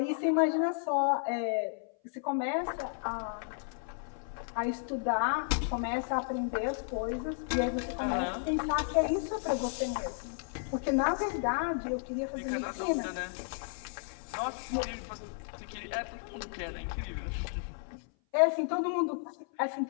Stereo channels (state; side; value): silent; right; 56 dB below the other